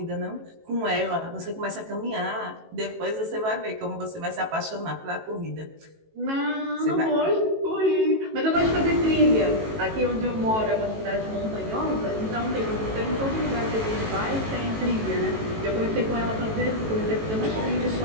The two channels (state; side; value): late; left; 18 ms